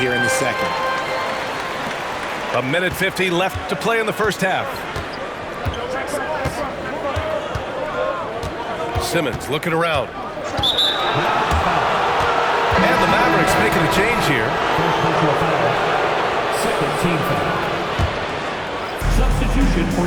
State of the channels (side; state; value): both; identical; correlation 1.00